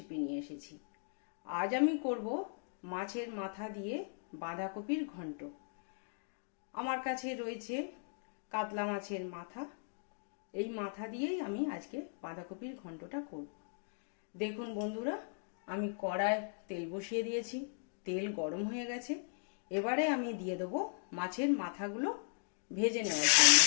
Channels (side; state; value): right; silent; digital silence